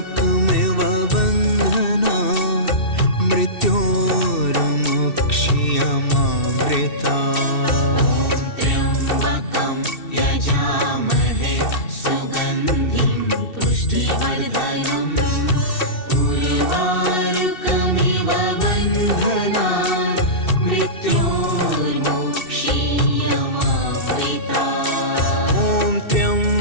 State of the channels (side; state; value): right; late; 2.7 ms